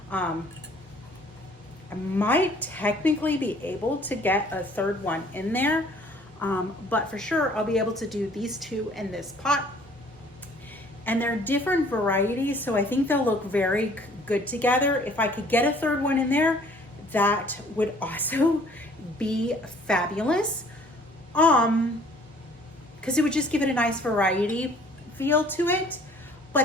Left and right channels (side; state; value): both; normal; correlation 0.56